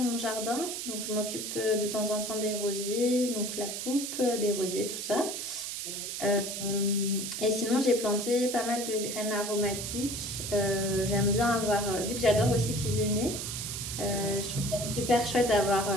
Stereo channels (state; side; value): noise; right; hiss, 5 dB below the sound